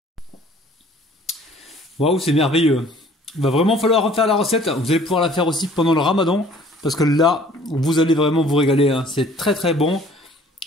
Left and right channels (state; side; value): normal; both; correlation 0.54